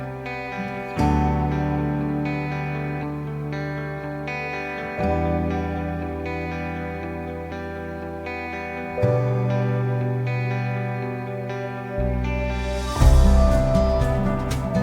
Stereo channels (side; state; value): both; identical; correlation 1.00